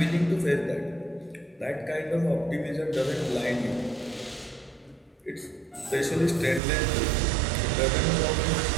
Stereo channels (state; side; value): drops out; left; at 6.6 s